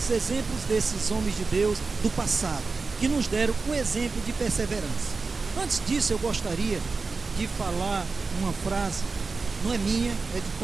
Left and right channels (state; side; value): quieter; left; 4.2 dB